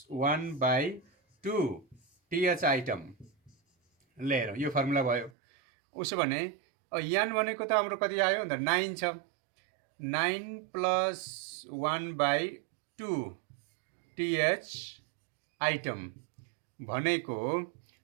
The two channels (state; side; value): drops out; left; at 5.3 s